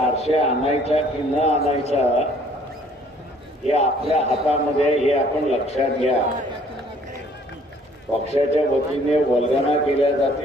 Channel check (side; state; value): both; normal; correlation 0.58